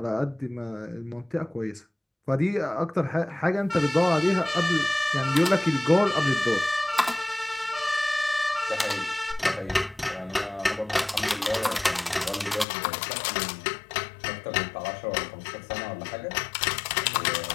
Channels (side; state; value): right; drops out; at 12.7 s